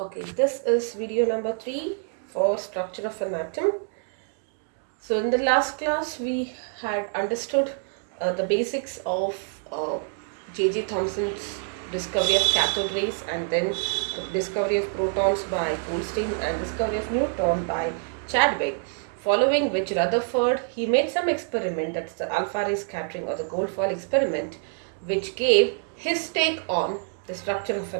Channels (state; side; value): silent; left; 56 dB below the other